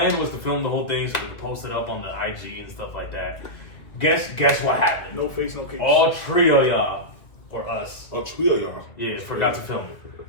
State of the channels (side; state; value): right; late; 2.0 ms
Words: was to film the whole thing so we could post it up on the IG and stuff like that. Guess what happened? No face, no case. All three of y'all, or us, Oh, trio, y'all. yeah, forgot to film it.